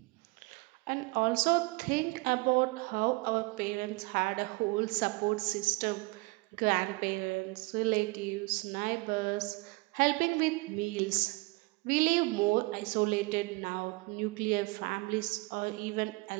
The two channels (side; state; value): left; quieter; 25.5 dB